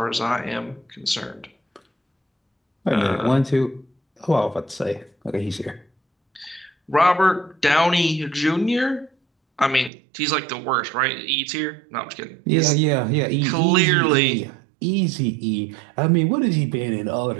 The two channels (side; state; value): left; drops out; at 9.9 s